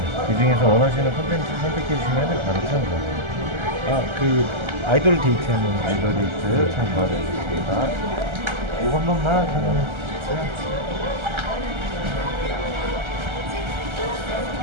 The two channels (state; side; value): late; left; 1.3 ms